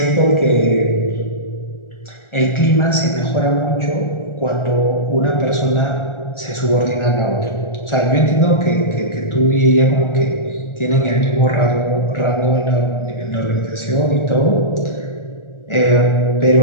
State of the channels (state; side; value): late; right; 1.4 ms